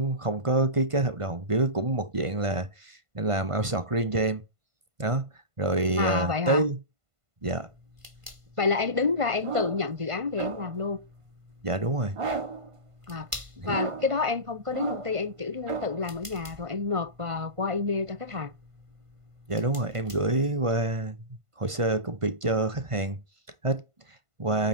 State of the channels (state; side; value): late; left; 1.5 ms